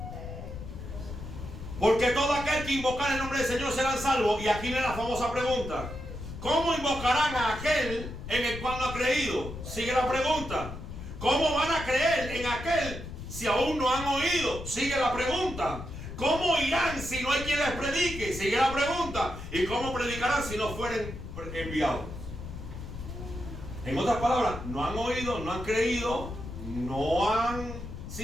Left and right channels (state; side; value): noise; left; rumble, 9 dB below the sound